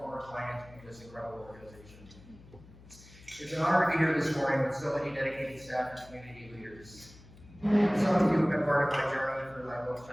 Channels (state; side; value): noise; left; hum, 21 dB below the sound